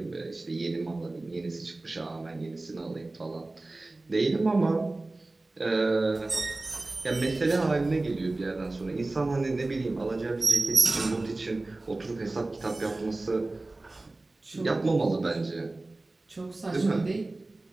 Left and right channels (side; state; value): left; quieter; 3.0 dB